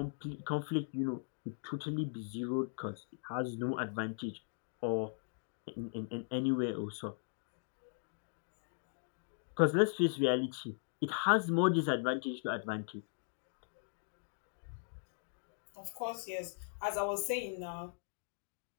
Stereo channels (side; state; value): right; silent; digital silence